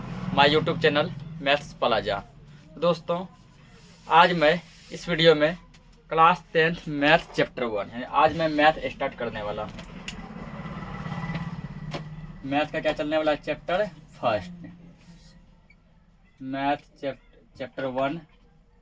my YouTube channel Maths Plaza. दोस्तों, आज मैं इस वीडियो में क्लास 10th मैथ चैप्टर 1 यानी आज मैं मैथ स्टार्ट करने वाला हूँ। मैथ का क्या चलने वाला चैप्टर फर्स्ट, मैथ चैप्टर 1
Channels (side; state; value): both; identical; correlation 1.00